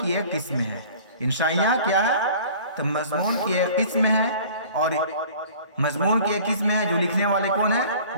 کی ایک قسم ہے۔ انشائیاں کیا ہے تو مضمون کی ایک قسم ہے، اور مضمون کی ایک قسم ہے جو لکھنے والے کون ہے،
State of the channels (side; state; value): both; inverted; correlation -0.47